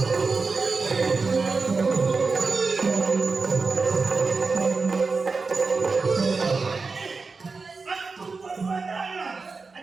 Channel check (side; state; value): left; quieter; 4.3 dB